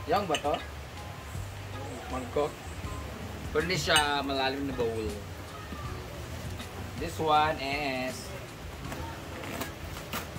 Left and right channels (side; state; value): both; identical; correlation 1.00